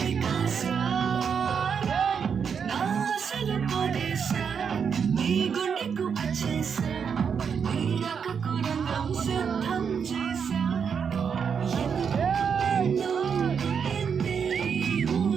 కాసా నా అసలు పొదేసా నీ గుండెకు వచ్చేసా నీ రకకు రంగం సిద్ధం చేసా ఎన్నో పుట్టింది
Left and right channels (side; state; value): left; quieter; 6.8 dB